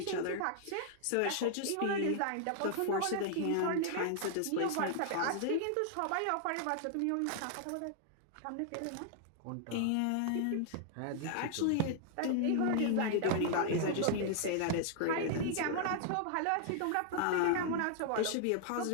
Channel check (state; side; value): different; both; correlation 0.00